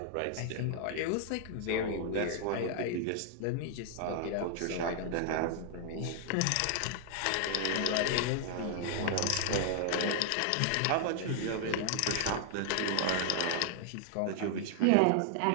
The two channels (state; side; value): different; both; correlation 0.00